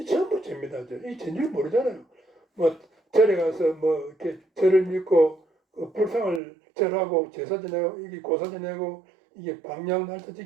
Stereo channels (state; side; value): drops out; left; at 6.4 s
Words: 전부 죄입니다. 이 죄인 줄 모르잖아요. 절에 가서 이렇게 절을 믿고 불상을 절하고 제사 지내고 이게 고사 지내고 이게 방향 날짜